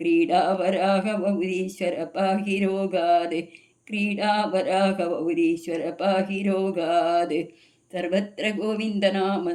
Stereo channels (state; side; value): identical; both; correlation 1.00